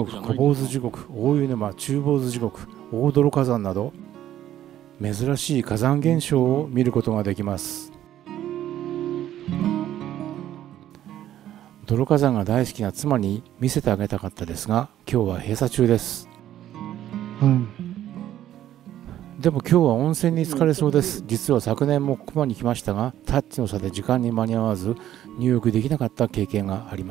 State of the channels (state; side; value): quieter; left; 12.1 dB